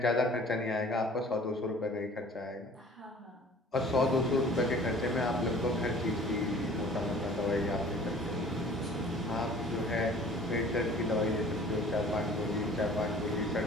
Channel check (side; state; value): both; normal; correlation 0.49